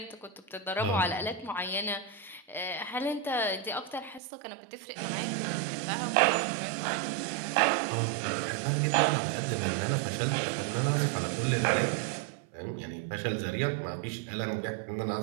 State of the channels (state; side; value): drops out; left; at 4.2 s